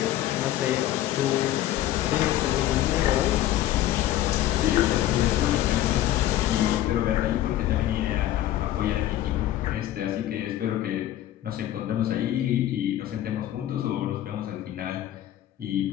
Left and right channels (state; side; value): quieter; right; 13.2 dB